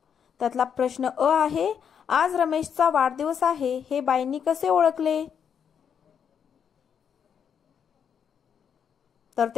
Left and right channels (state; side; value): quieter; right; 7.7 dB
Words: त्यातला प्रश्न अ आहे, आज रमेशचा वाढदिवस आहे हे बाईंनी कसे ओळखले? तर